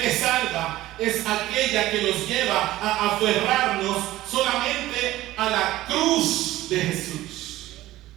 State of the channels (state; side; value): quieter; left; 16.1 dB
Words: salva es aquella que nos lleva a aferrarnos solamente a la cruz de Jesús.